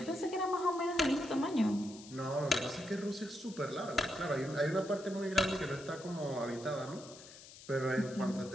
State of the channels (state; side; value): noise; left; hiss, 17 dB below the sound